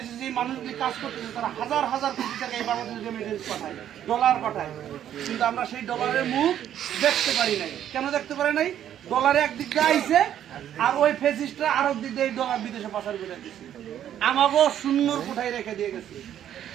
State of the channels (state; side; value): quieter; left; 10.6 dB